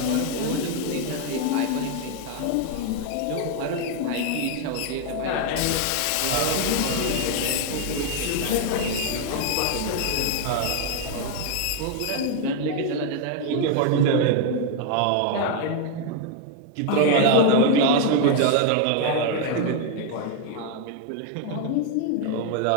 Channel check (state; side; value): different; both; correlation 0.01